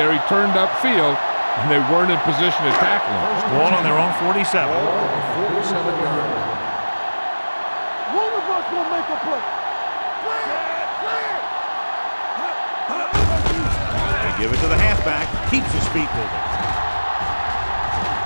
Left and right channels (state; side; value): inverted; both; correlation -1.00